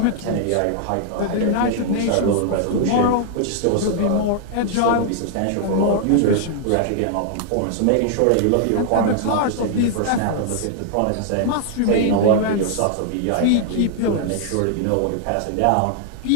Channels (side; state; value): both; different; correlation 0.00